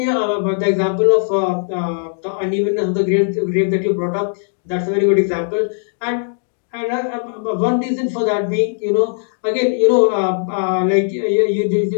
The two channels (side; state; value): right; silent; digital silence